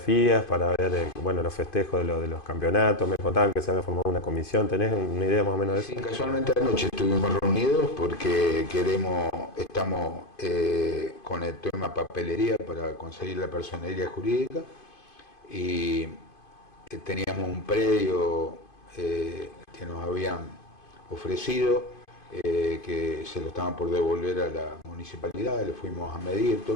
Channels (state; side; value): late; right; 2.5 ms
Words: para ver bueno, los festejos de los campeonatos. Me contaban que se había formado una comisión. ¿Tenés una idea más o menos de eso? Sí, casualmente anoche estuvimos reunidos porque estamos con el tema papelería para conseguir la personería jurídica y teníamos un predio que nos habían ofrecido, que se lo estaban por devolver a la municipalidad, le fuimos a medir